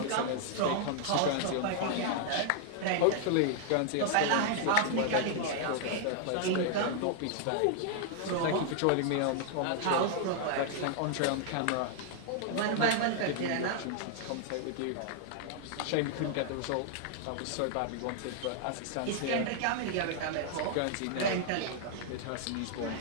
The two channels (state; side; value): different; both; correlation 0.00